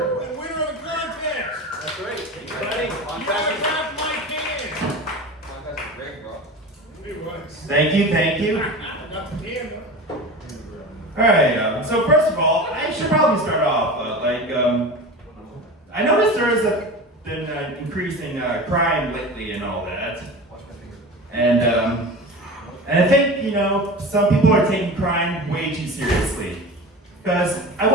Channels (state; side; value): normal; both; correlation 0.32